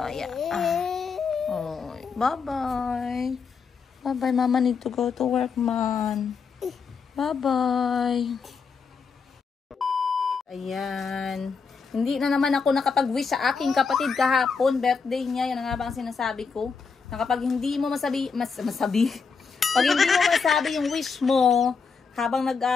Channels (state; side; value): quieter; right; 5.3 dB